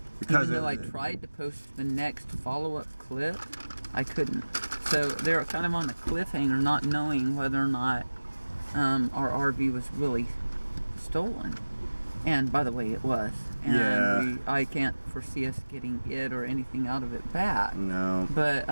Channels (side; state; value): both; inverted; correlation -1.00